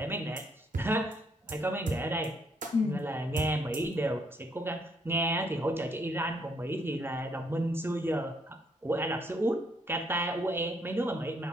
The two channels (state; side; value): normal; both; correlation 0.71